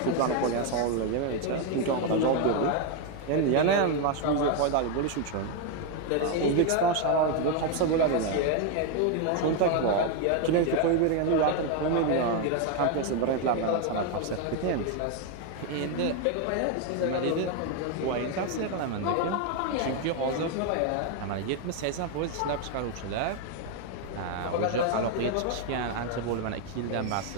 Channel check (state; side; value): different; both; correlation 0.01